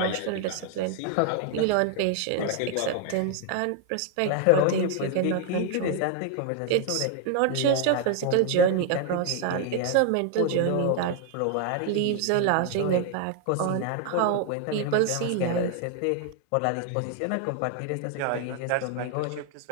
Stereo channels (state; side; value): different; both; correlation 0.00